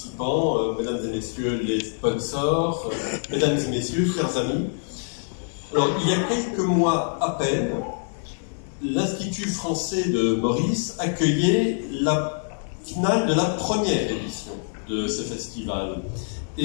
Mesdames et Messieurs les sponsors, Mesdames et Messieurs, chers amis. Alors, il y a quelques mois à peine, l'Institut français de Maurice accueillait la finale de la première édition de ce festival.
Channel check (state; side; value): silent; right; digital silence